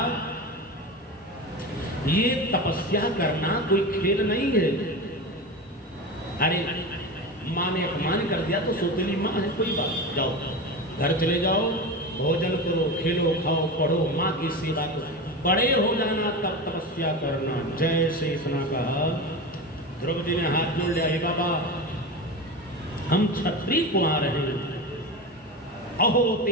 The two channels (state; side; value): normal; both; correlation 0.24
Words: ये तपस्या करना कोई खेल नहीं है। अरे माँ ने अपमान कर दिया तो सौतेली माँ है, कोई बात, जाओ घर चले जाओ, भोजन करो, खेलो खाओ, पढ़ो, माँ की सेवा करो, बड़े हो जाना तब तपस्या करना। जैसे इतना कहा, ध्रुव जी ने हाथ जोड़ लिया, हे बाबा, हम क्षत्रिय कुमार हैं, अहो